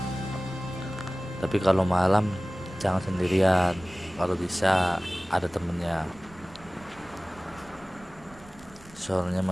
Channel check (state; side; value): noise; right; rumble, 22 dB below the sound